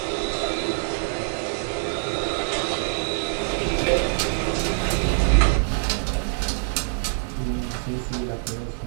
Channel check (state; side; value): silent; left; digital silence